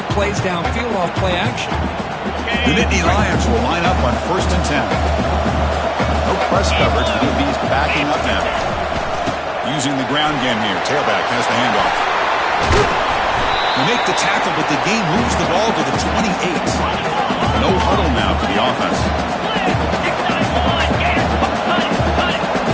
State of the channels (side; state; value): both; identical; correlation 1.00